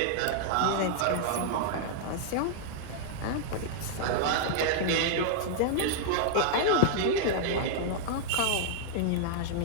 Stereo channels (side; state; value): both; different; correlation -0.01